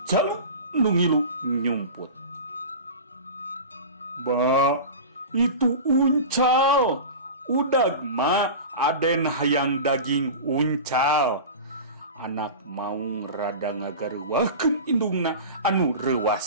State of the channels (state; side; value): inverted; both; correlation -0.31